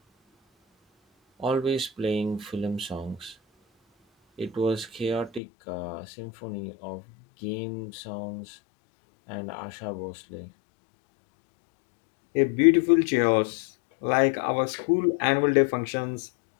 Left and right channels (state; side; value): drops out; right; at 5.4 s